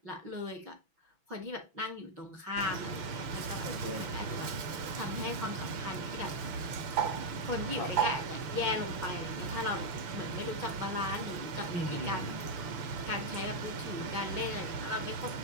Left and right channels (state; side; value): late; left; 6.1 ms